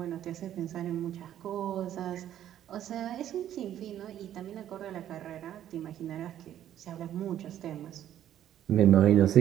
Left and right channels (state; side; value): quieter; left; 11.3 dB